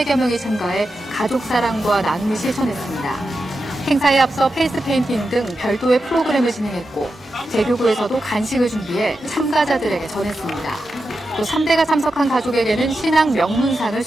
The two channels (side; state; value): both; normal; correlation 0.89